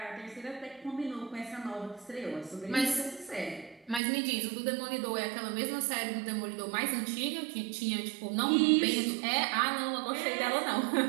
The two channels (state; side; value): drops out; left; at 4.0 s